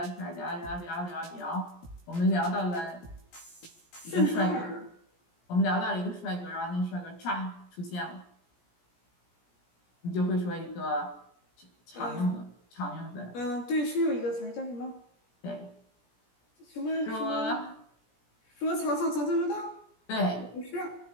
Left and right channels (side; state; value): right; late; 17 ms